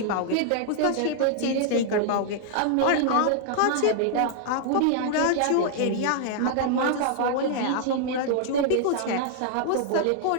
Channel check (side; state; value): both; different; correlation -0.01